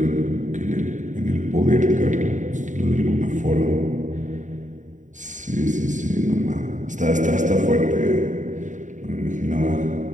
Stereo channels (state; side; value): late; left; 0.36 ms